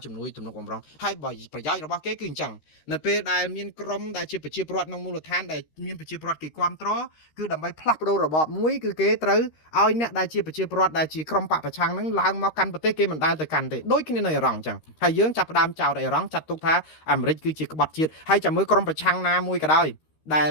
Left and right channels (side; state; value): right; late; 13 ms